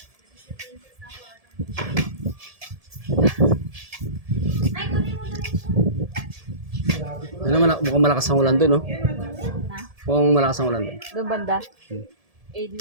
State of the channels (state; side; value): late; left; 1.7 ms